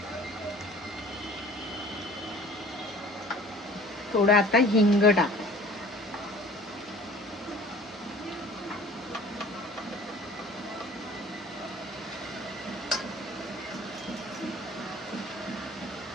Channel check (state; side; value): normal; both; correlation 0.48